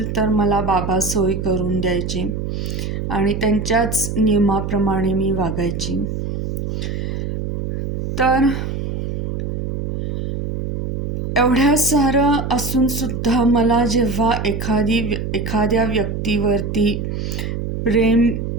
तर मला बाबा सोय करून द्यायचे आणि त्यांच्याच नियमाप्रमाणे मी वागायची. तर एवढ्या सारं असूनसुद्धा मला जेव्हा एखाद्या व्यक्तीवरती प्रेम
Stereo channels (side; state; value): right; noise; hum, 3 dB below the sound